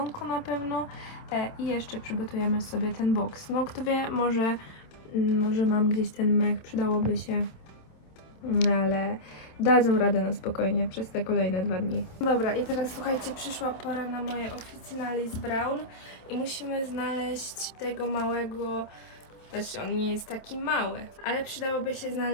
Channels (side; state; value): right; late; 27 ms